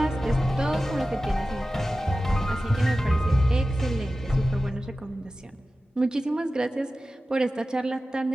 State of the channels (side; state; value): both; normal; correlation 0.95